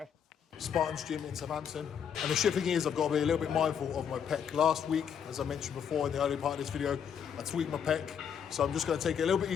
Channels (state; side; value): quieter; right; 7.8 dB